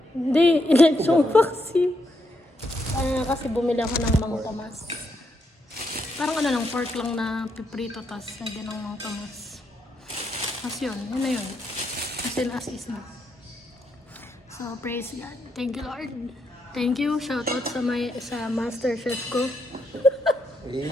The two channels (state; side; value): normal; both; correlation 0.79